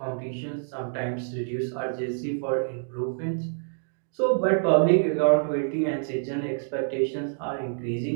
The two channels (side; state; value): left; silent; digital silence